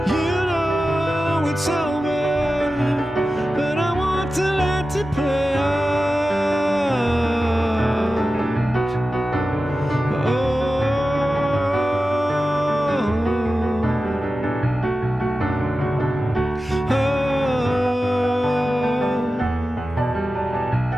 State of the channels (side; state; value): both; normal; correlation 0.94